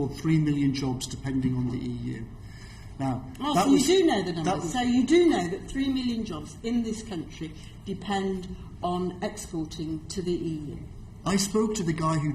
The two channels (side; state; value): both; identical; correlation 1.00